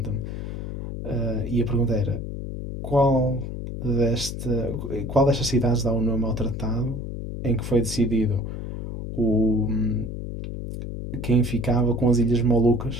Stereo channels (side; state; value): left; noise; hum, 6 dB below the sound